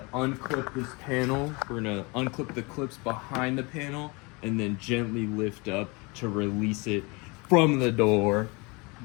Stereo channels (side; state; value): right; quieter; 27.7 dB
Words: unclip this panel. We're gonna unclip the clips behind the panel and then gently lift up to release it from the door.